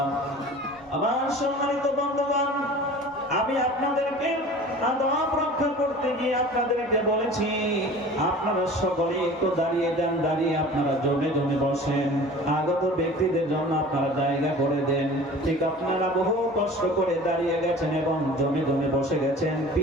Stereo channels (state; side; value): noise; right; hum, 29 dB below the sound